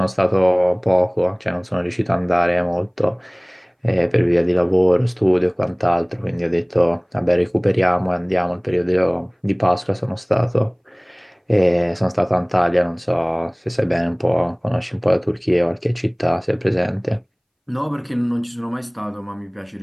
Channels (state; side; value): identical; both; correlation 1.00